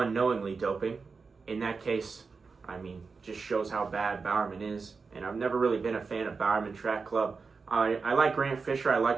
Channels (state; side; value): quieter; left; 4.7 dB